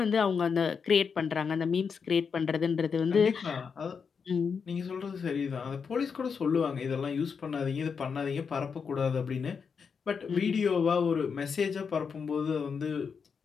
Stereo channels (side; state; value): right; quieter; 6.0 dB